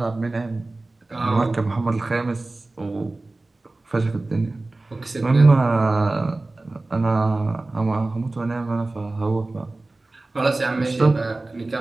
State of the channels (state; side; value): quieter; left; 3.1 dB